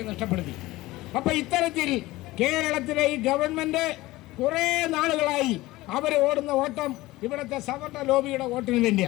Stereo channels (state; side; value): quieter; right; 18.7 dB